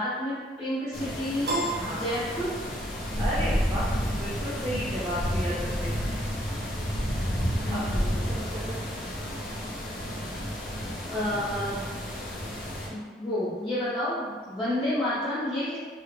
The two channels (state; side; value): normal; both; correlation 0.66